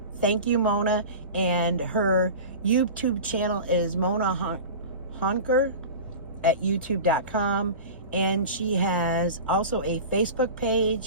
thank you, Mona. And her YouTube channel is Mona Honker at youtube.com. And she has also a Facebook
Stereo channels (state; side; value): inverted; both; correlation -0.32